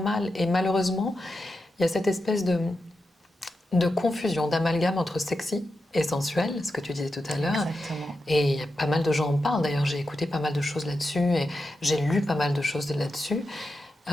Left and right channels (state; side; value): normal; both; correlation 0.89